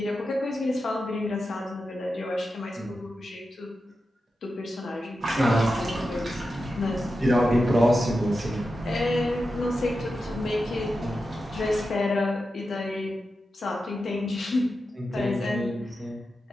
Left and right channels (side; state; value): both; normal; correlation 0.90